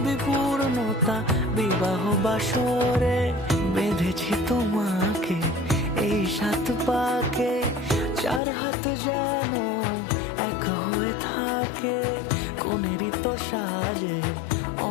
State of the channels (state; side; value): drops out; right; at 8.4 s